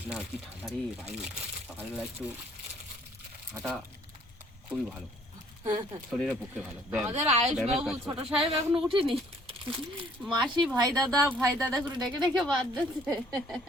না কি ঠান্ডা রে ভাই, সকালবেলা একটু হাঁটা খুবই ভালো, শরীরের পক্ষে ভালো। আমাদের আয়ুষ বাবু ছোট সাহেব এখনো উঠেনি, মাসি ভাই দাদা করে ডেকে ডেকে বাদ দিচ্ছে।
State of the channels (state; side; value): normal; both; correlation 0.60